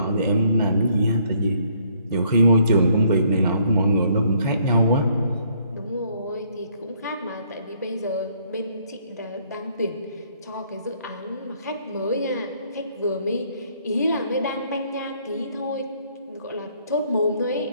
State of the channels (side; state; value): both; inverted; correlation -0.66